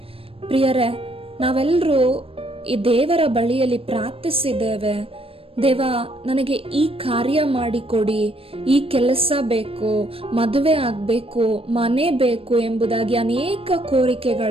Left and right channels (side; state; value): left; late; 0.27 ms